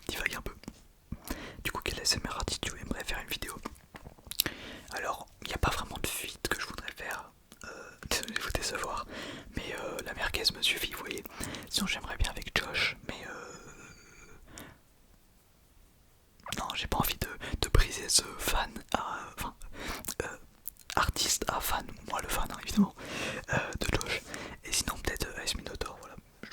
divague un peu. Du coup, quel ASMR artiste tu aimerais faire une vidéo? Alors, il n'y a pas vraiment de feat que je voudrais faire, désolé de vous décevoir, mais la merguez me suffit, vous voyez. Sinon, j'aimerais bien avec Josh, mais non, j'ai pas envie de briser ce fan à. Enfin, artiste à fan, moi le fan, hein, évidemment, de Josh. Et sinon, peut-être Ice Minotaur, voilà, je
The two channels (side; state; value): both; identical; correlation 1.00